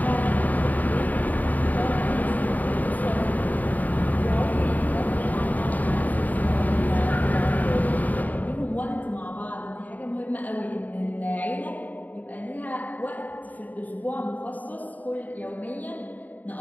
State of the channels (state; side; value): late; right; 0.079 ms